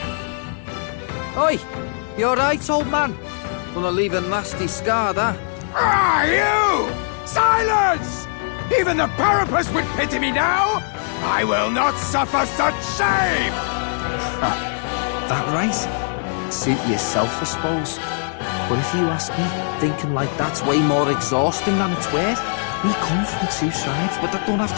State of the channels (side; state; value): right; silent; digital silence